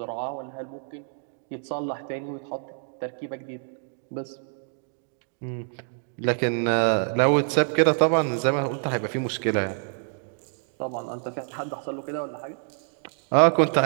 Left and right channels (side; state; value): left; silent; digital silence